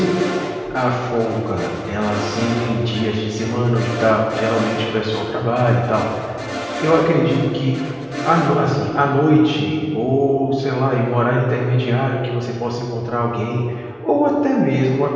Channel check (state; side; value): identical; both; correlation 1.00